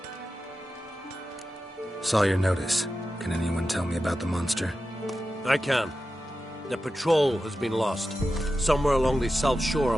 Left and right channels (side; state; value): both; normal; correlation 0.92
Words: Saw your notice. Can anyone tell me about the monster? I can. The patrol has been lost. Somewhere along the south shore